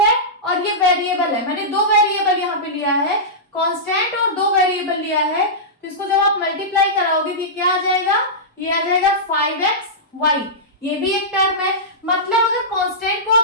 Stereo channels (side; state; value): both; normal; correlation -0.14